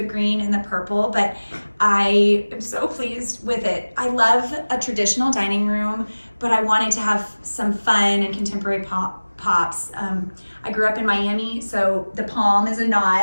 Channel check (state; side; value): inverted; both; correlation -1.00